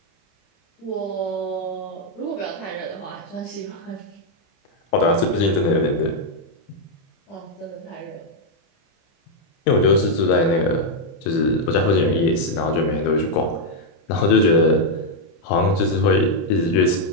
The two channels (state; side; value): late; right; 30 ms